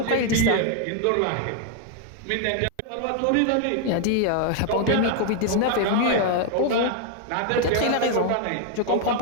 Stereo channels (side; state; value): both; different; correlation 0.00